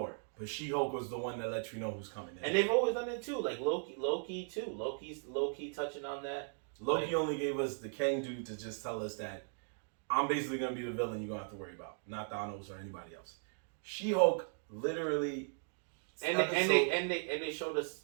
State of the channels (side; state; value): left; silent; 53 dB below the other